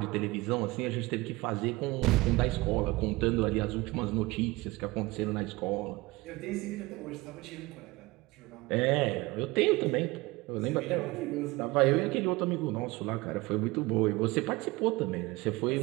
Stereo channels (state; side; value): quieter; left; 21.7 dB